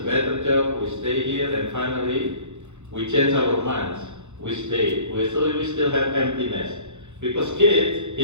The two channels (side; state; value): left; late; 0.83 ms